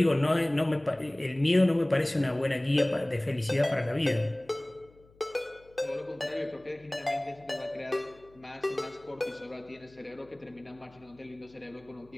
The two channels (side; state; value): left; noise; hum, 28 dB below the sound